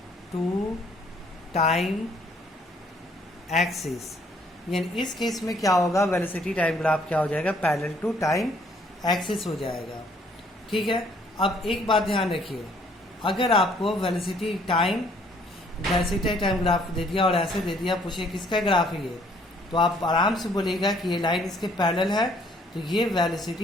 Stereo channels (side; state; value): both; normal; correlation 0.63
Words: to time axis. यानी इस केस में क्या होगा, वेलोसिटी टाइम ग्राफ क्या हो जाएगा, पैरेलल टू टाइम एक्सिस हो जाएगा। ठीक है, अब एक बात ध्यान रखिए, अगर आपको वेलोसिटी टाइम ग्राफ दे दिया और ऐसे दे दिया, पूछे किसका ग्राफ है ये, तो आप आराम से बोलेगा कि ये लाइन इसके पैरेलल है, तो ये